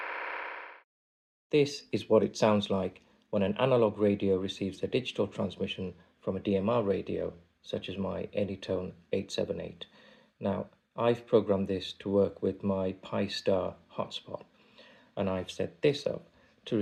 This is what it sounds like when an analog radio receives a digital transmission from a DMR radio, such as my Anytone 878. Now, I've programmed this to work with my Pi-Star hotspot, and I've set this up to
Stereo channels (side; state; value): both; identical; correlation 1.00